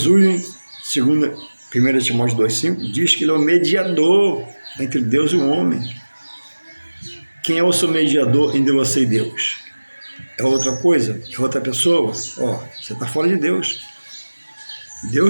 segundo 1 Timóteo 2,5, diz que ele é o mediador entre Deus e o homem. Quem é o seu mediador entre você e Deus? É outra coisa? É outra pessoa? Você está fora de Deus.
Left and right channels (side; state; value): both; inverted; correlation -1.00